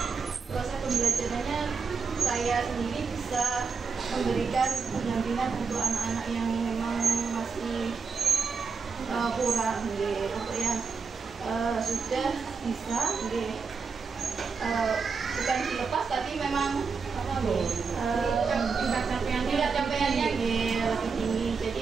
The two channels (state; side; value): quieter; left; 5.2 dB